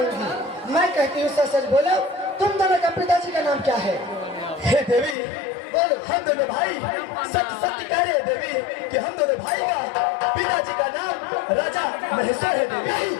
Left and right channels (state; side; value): drops out; right; at 5.2 s